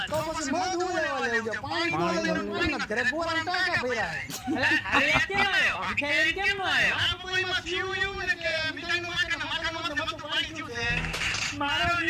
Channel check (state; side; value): identical; both; correlation 1.00